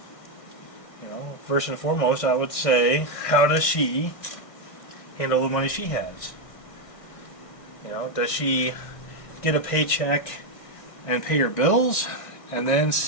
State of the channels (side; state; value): right; late; 1.6 ms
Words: You know, first and foremost, I would say, how does she handle the money she has? You know, does she get a paycheck and pay her bills and then